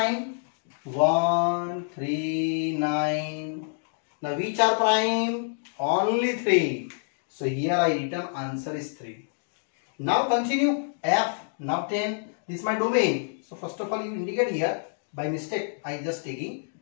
1, 3, 9. Now which are prime? Only 3. So here I written answer is 3. Now continue F. Now 10. This is my domain. So first of all you indicate here. By mistake I just taking.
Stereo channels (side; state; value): right; silent; digital silence